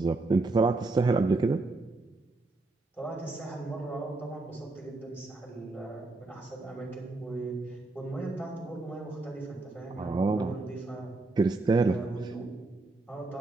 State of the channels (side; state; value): left; quieter; 3.3 dB